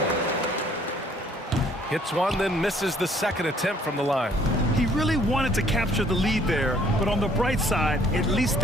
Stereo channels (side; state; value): both; normal; correlation 0.61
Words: Hits one, then misses the second attempt from the line. He really wanted to capture the lead there, but on the bright side, at least